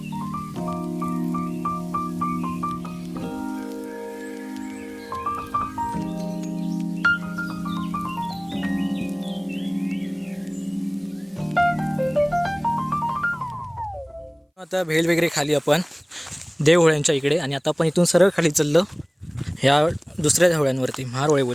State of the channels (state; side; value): identical; both; correlation 1.00